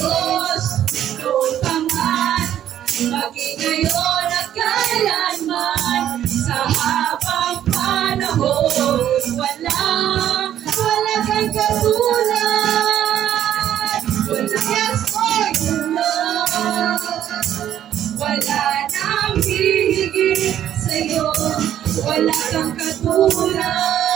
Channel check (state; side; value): quieter; left; 11.0 dB